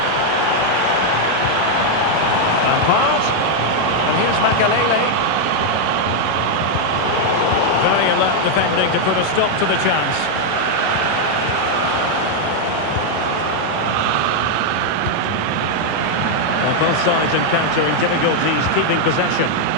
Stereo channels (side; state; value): both; different; correlation 0.00